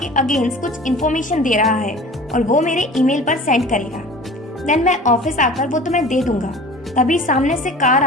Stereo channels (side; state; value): both; normal; correlation 0.42